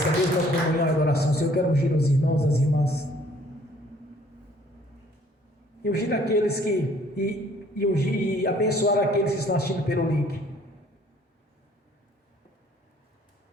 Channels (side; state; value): both; normal; correlation 0.59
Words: mesma comunhão e adoração, Senhor, eu quero ungir os irmãos, as irmãs. E ungir aqueles que... E abençoar aqueles que estão assistindo pelo link.